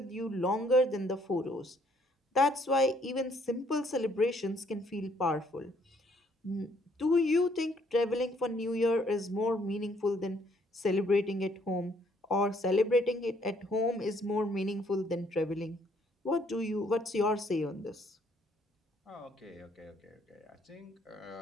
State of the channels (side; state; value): both; normal; correlation 0.66